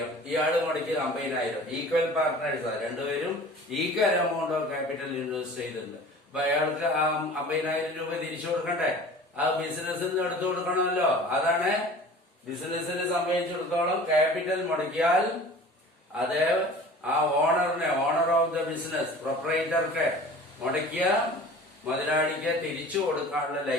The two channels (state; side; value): normal; both; correlation 0.42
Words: ഇയാള് മുടക്കിയത് 50,000. ഈക്വൽ പാർട്ട്നേഴ്സാണ്. 2 പേരും equal amount of capital invest ചെയ്തിട്ടുണ്ട്. അപ്പൊ അയാൾക്ക് ആ 50,000 രൂപ തിരിച്ചു കൊടുക്കണ്ടേ? ആ ബിസിനസ്സിൽ നിന്ന് എടുത്തു കൊടുക്കണമല്ലോ. അതാണ് ബിസിനസിനെ സംബന്ധിച്ചിടത്തോളം ക്യാപിറ്റൽ മുടക്കിയാൽ അത് ആ ഓണറിനെ, ഓണർ ഓഫ് ദ ബിസിനസ്, പ്രൊപ്പറേറ്റർക്ക് മുടക്കിയ മുതലാളിക്ക് തിരിച്ചു കൊടുക്കാനുള്ള